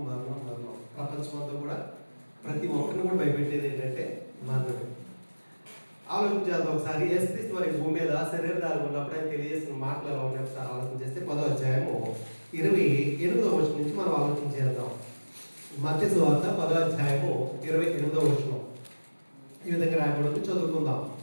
మరణం మరణం ప్రపంచమంతా కూడా ప్రతి ఒక్కరిని కూడా భయపెట్టేది ఏంటంటే మరణమే. ఆలోచించేద్దాం ఒకసారి. యేసుక్రీస్తు వారి భూమి మీద శరీరధారి ఉన్నప్పుడు ఆయన తెలియజేసిన మాటలు ఎలా ఉన్నాయి ఒకసారి ఆలోచన చేస్తే 10వ అధ్యాయము 28వ వచనం నుంచి మనం ఆలోచన చేద్దాం. మత్తయి సువార్త 10వ అధ్యాయము 28వ వచనం ఈ విధంగా రాయబడి చదువుకుందాం.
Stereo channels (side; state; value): both; inverted; correlation -1.00